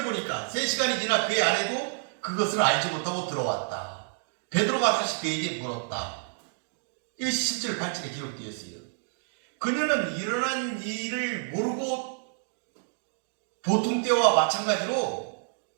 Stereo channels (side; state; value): left; silent; digital silence